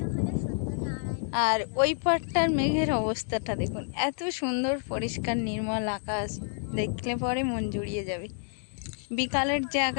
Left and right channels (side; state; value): right; silent; digital silence